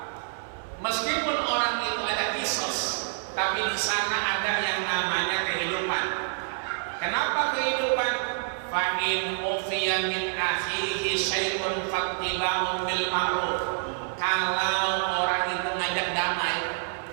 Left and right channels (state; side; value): silent; left; 60 dB below the other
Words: Meskipun orang itu ada kisos, tapi di sana ada yang namanya kehidupan. Kenapa kehidupan? Fa in ufiya min akhihi syai'un fattiba'un bil ma'ruf. Kalau orang itu ngajak damai,